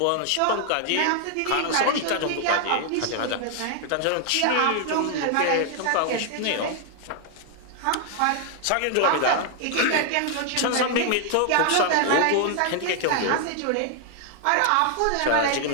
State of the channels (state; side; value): different; both; correlation 0.00